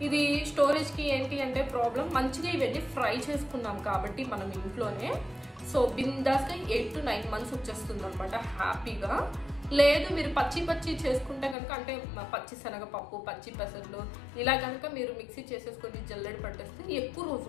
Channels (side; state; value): right; drops out; at 11.6 s